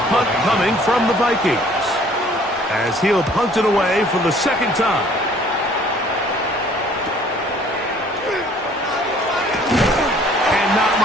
punt coming from the Vikings, as he'll punt it away for the 2nd time. And not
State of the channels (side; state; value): both; normal; correlation 0.56